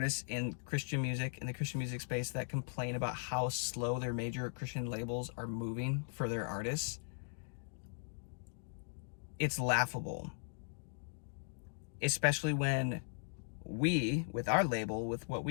in Christian music, in the Christian music space, that complain about how slow their major Christian labels are moving for their artists, it's laughable. Especially when we, with our label, with what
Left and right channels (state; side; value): silent; right; digital silence